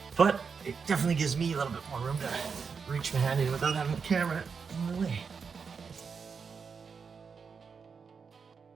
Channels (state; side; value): quieter; left; 5.7 dB